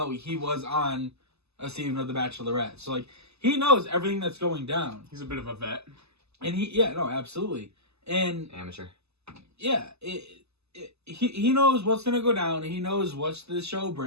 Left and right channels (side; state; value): left; late; 0.79 ms